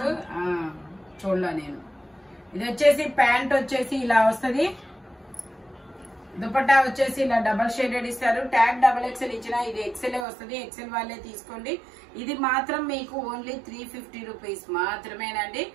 చూడలా నేను. ఇది వచ్చేసి ప్యాంట్ వచ్చేసి ఇలా వస్తుంది. దుపట్టా వచ్చేసి ఇలా డబల్ షేడెడ్ ఇస్తారు. ట్యాగ్ XXL ఇచ్చిన ఇది XL వస్తుంది. XL వాళ్ళే తీసుకోండి. ఇది మాత్రం మీకు ఓన్లీ 350 రూపీస్ మాత్రమేనండి.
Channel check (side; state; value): left; drops out; at 10.2 s